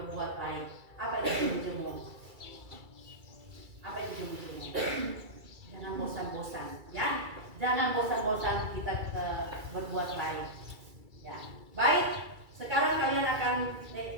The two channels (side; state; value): left; late; 2.3 ms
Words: baik. Apa itu jemu-jemu? Apa itu jemu-jemu? Jangan bosan-bosan, ya. Jangan bosan-bosan kita berbuat baik. Ya. Baik, sekarang kalian akan